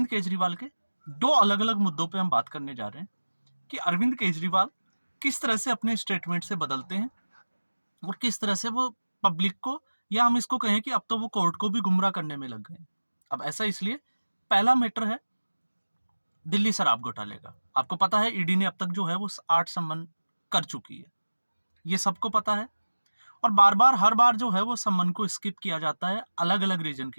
केजरीवाल के 2 अलग-अलग मुद्दों पे हम बात करने जा रहे हैं कि अरविंद केजरीवाल किस तरह से अपने स्टेटमेंट से बदलते हैं और किस तरह से वो पब्लिक को या हम इसको कहें कि अब तो वो कोर्ट को भी गुमराह करने में लग गए हैं। अब ऐसा इसलिए पहला मैटर है दिल्ली शराब घोटाले का। आपको पता है ईडी ने अब तक जो है वो 8 सम्मन कर चुकी है। ये सबको पता है। और बार-बार हर बार जो है वो सम्मन को स्किप किया जाता है अलग-अलग रीजन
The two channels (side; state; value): both; inverted; correlation -1.00